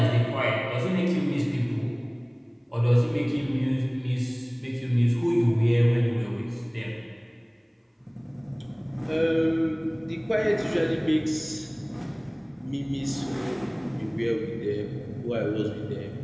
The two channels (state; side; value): identical; both; correlation 1.00